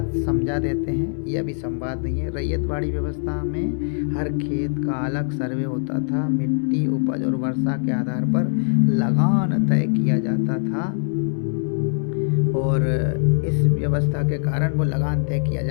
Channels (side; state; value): right; silent; digital silence